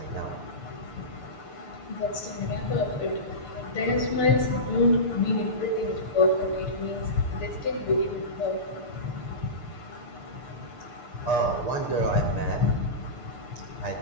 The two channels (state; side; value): late; right; 6.7 ms